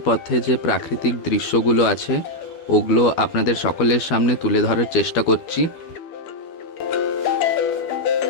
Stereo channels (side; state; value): right; late; 12 ms